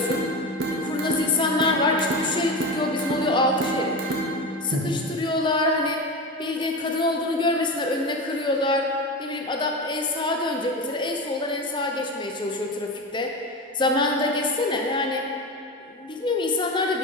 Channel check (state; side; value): normal; both; correlation 0.23